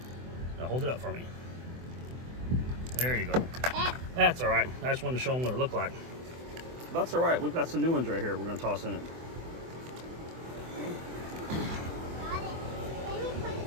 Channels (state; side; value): late; left; 24 ms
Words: Now hold it up for me. There you go. That's all right. I just wanted to show them what it looked like. That's all right. We've got some new ones right here we're going to toss in it.